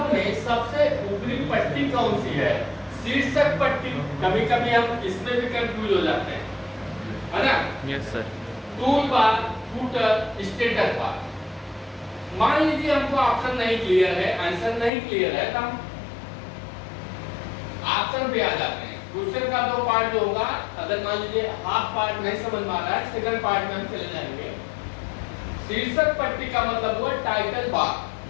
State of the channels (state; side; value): drops out; right; at 14.9 s